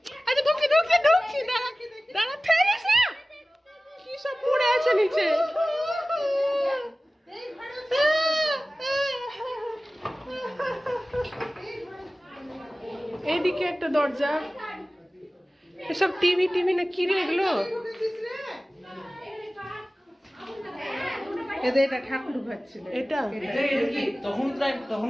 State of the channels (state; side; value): normal; both; correlation 0.97